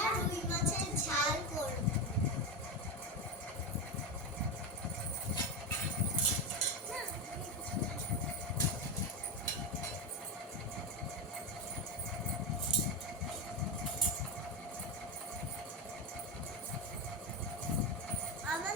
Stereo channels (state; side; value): normal; both; correlation 0.13